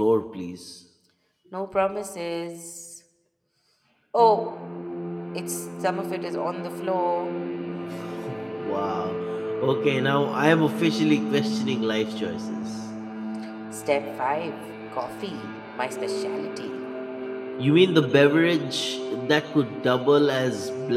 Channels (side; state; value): both; identical; correlation 1.00